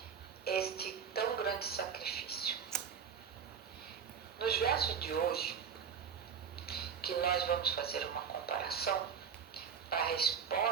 este tão grande sacrifício? Nos versos de hoje, que nós vamos fazer uma comparação, a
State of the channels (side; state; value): left; quieter; 7.1 dB